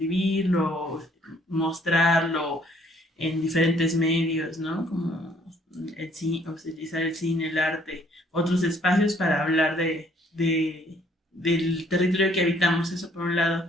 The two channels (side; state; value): both; normal; correlation 0.62